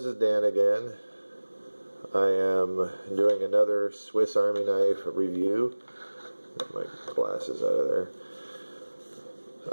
is Dan again. I am doing another Swiss Army knife review. Get my glasses out of there.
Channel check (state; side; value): inverted; both; correlation -1.00